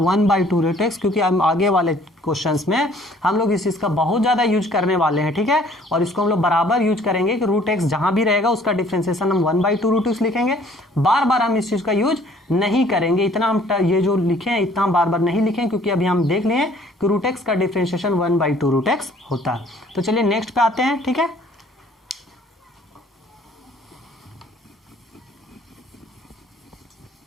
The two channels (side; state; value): both; normal; correlation 0.57